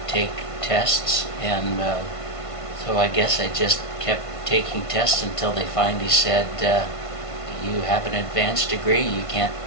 take tests, and so I guess I just kept taking tests until they finally said, you have an advanced degree, you can't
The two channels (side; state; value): right; late; 1.5 ms